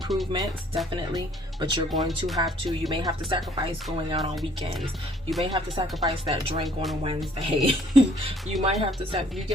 definitely, but you're going to have to, you may have to sacrifice going out on weekends. You may have to sacrifice that drink on a Wednesday. You might have to you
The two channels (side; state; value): both; normal; correlation 0.60